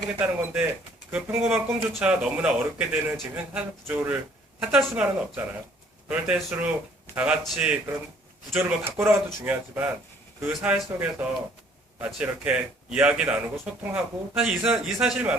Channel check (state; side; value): normal; both; correlation 0.60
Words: 건데 그 평범한 꿈조차 너무나 어렵게 되는 지금 현 사회 구조를 탓할 수만은 없잖아요. 그럴 때일수록 다 같이 그런 구조를 바꿔나가도 중요하지만 그 사회 속에서 같이 이렇게 이야기 나누고 소통하고 사실 이